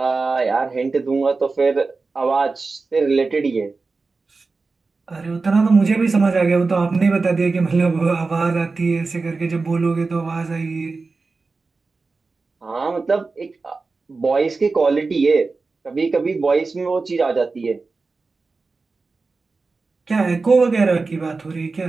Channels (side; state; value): left; quieter; 4.0 dB